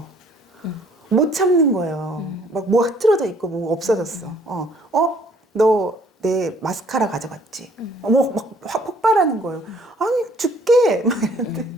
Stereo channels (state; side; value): normal; both; correlation 0.61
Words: 못 참는 거예요. 막 뭐 흐트러져 있고 뭐 없어졌어. 너 내 마스카라 가져갔지. 막 폭발하는 거예요. 아니 죽게 막 이러는데.